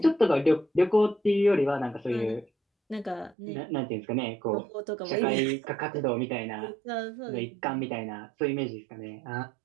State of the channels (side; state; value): left; drops out; at 3.4 s